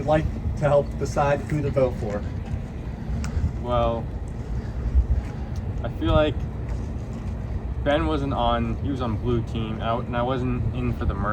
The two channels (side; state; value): both; identical; correlation 1.00